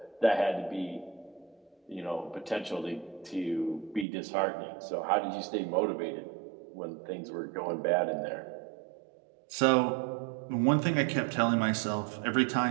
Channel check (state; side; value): drops out; left; at 4.0 s